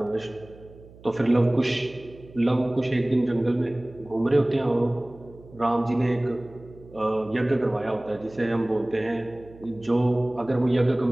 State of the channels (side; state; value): right; noise; hum, 22 dB below the sound